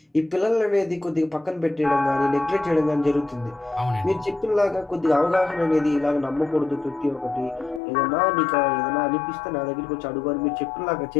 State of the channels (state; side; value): drops out; right; at 7.8 s